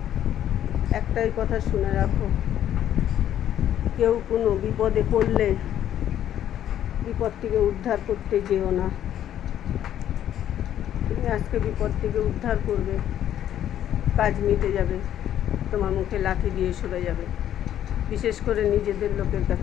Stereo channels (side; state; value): right; quieter; 11.0 dB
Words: একটাই কথা শুনে রাখো, কেউ কোনো বিপদে পড়লে বিপদ থেকে উদ্ধার করতে যেও না। তুমি আজকে বিপদ থেকে উদ্ধার করবে, কাজ মিটে যাবে, তোমার মুখে লাঠি দিয়ে সরে যাবে, বিশেষ করে নিজেদের লোকের